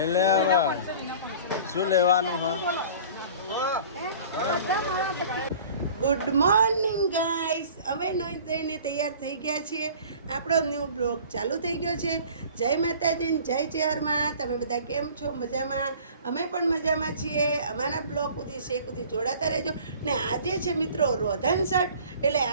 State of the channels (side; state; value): both; inverted; correlation -0.46